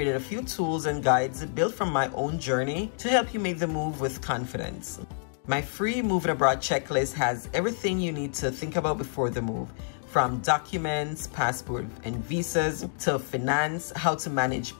a few tools and guides built from my own journey to help you make the move with confidence. My free moving abroad checklist has everything you need to think about before the move, from documents, passport and visas, to finance, how to manage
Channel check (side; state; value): right; silent; digital silence